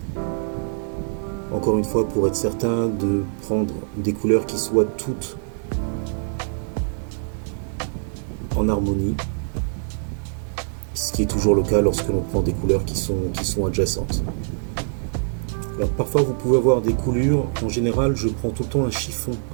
Encore une fois, pour être certain de prendre des couleurs qui soient toutes en harmonie, ce qui est toujours le cas lorsque l'on prend des couleurs qui sont adjacentes. Alors parfois vous pouvez avoir des coulures, en général je prends tout le temps un chiffon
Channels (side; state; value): left; silent; digital silence